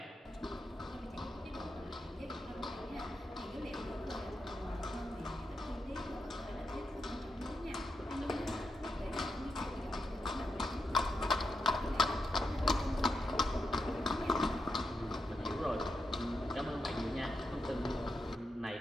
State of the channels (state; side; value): normal; both; correlation 0.84